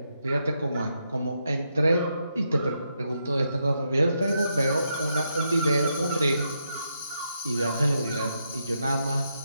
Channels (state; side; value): inverted; both; correlation -0.81